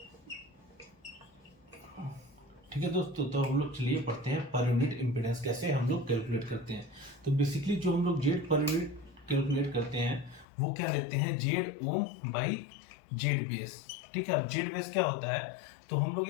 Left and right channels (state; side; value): drops out; right; at 10.5 s